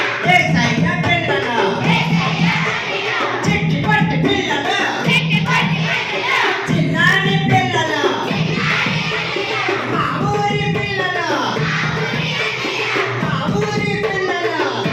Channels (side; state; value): both; identical; correlation 1.00